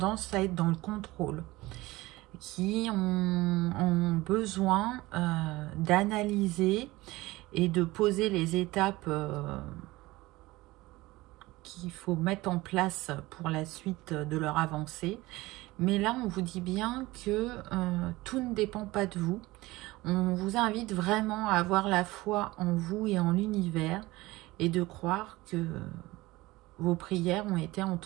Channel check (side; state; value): left; quieter; 19.7 dB